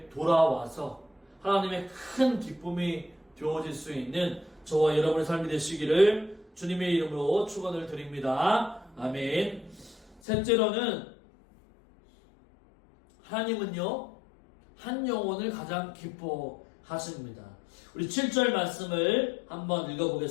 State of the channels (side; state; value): right; drops out; at 10.2 s